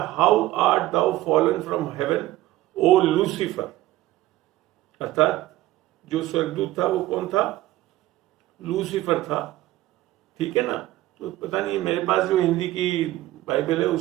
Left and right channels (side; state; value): left; quieter; 16.0 dB